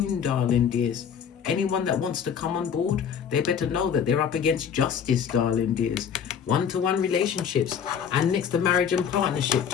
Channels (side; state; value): right; quieter; 7.8 dB